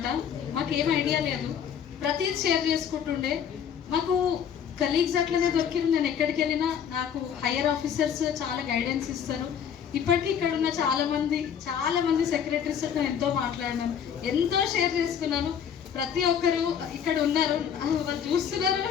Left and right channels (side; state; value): right; quieter; 8.2 dB